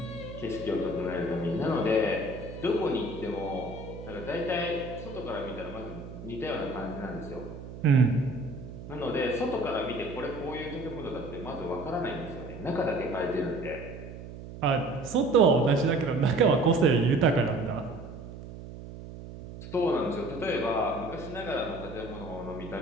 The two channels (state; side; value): noise; right; hum, 12 dB below the sound